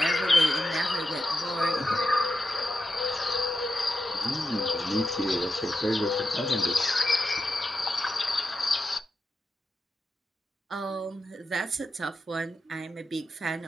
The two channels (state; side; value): normal; both; correlation 0.89